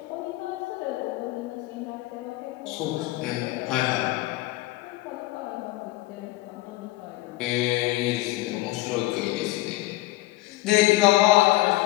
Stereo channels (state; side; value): quieter; right; 18.2 dB